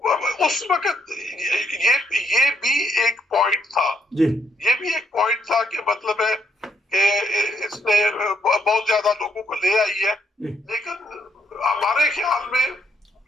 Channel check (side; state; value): both; normal; correlation 0.73